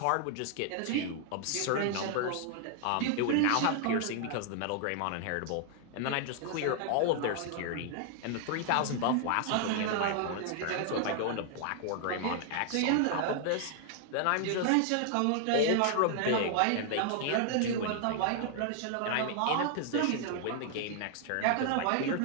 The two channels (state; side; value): different; both; correlation 0.00